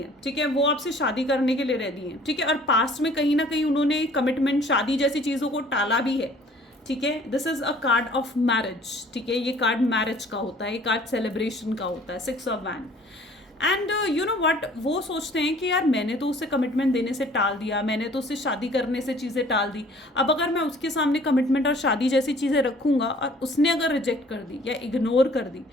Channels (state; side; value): normal; both; correlation 0.54